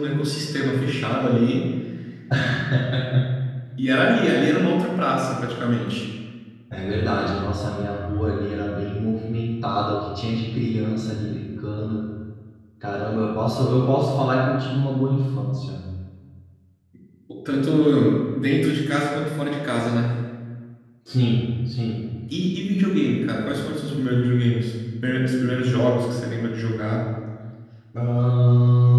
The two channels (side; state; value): both; identical; correlation 1.00